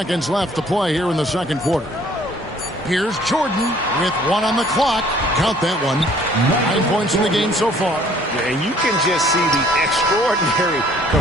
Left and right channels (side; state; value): both; normal; correlation 0.57